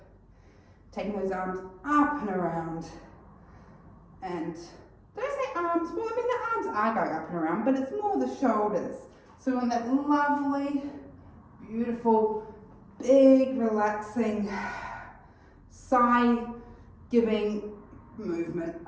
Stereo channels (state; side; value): identical; both; correlation 1.00